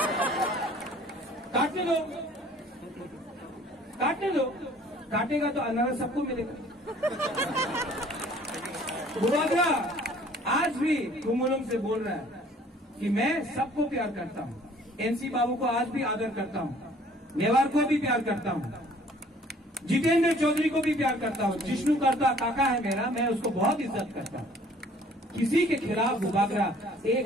काटने दो, काटेगा तो अनारस सबको मिलेगा। बुबागरा आज भी कुमुलम से बोल रहा है कि मैं सबको प्यार करता हूं, एनसी बाबू को आज भी आदर करता हूं, मेवाड़ को भी प्यार करता हूं, जितेंद्र चौधरी को भी प्यार करता हूं, जिष्णु करता काका है मेरा, मैं उसको बहुत इज्जत करता हूं। किसी के खिलाफ बुबागरा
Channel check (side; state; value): both; normal; correlation 0.55